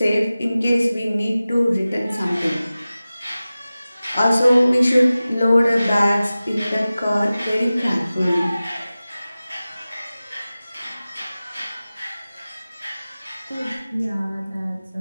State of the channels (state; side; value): inverted; both; correlation -0.96